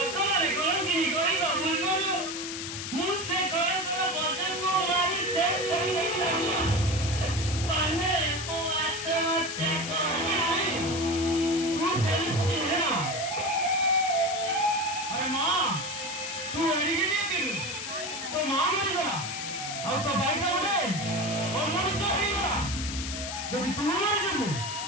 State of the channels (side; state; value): left; noise; hiss, 6 dB below the sound